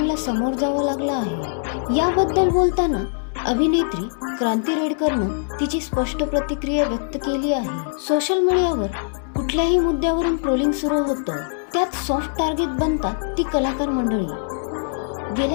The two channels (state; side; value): silent; right; digital silence